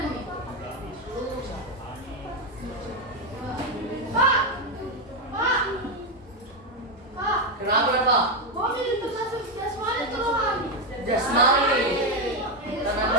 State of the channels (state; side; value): normal; both; correlation 0.07